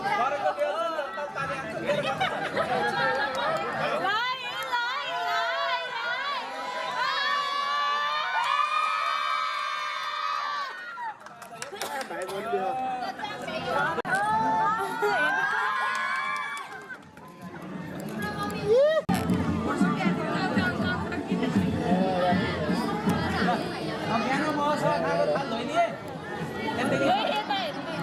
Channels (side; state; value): both; identical; correlation 1.00